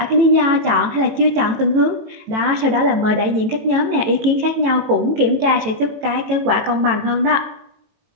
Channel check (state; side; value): late; left; 18 ms